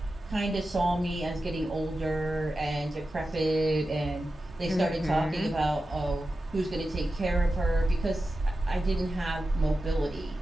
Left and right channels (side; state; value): both; normal; correlation 0.92